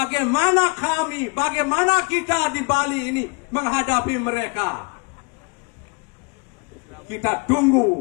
kita di Bali ini menghadapi mereka. Kita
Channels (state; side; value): quieter; right; 31.5 dB